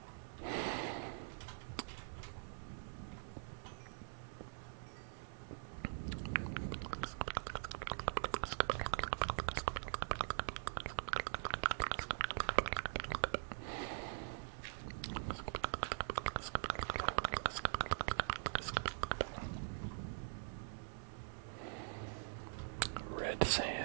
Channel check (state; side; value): silent; left; digital silence